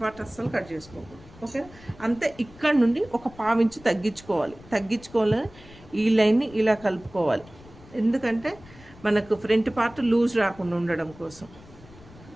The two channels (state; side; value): noise; left; rumble, 21 dB below the sound